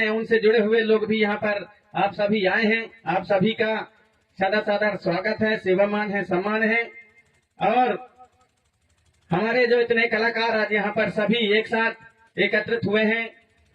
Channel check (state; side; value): identical; both; correlation 1.00